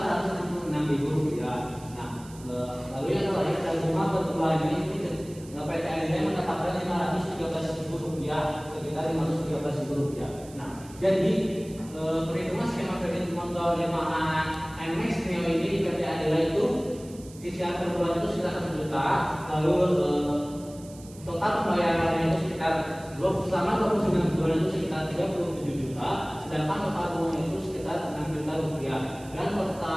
rupiah. Nah, lalu yang terakhir total bunga per bulannya itu PT Adira mendapatkan 513.000 rupiah, sekitar 513.000 rupiah. Nah, jadi perhitungan skema kredit motor Yamaha NMAX Neo ini di PT Adira itu cicilan per bulan itu sekitar 1 juta, lalu total pembayarannya itu sekitar selama 29 bulan itu sekitar 37 juta, sedangkan total bunga itu sekitar 6 juta rupiah dan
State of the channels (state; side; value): noise; right; hiss, 21 dB below the sound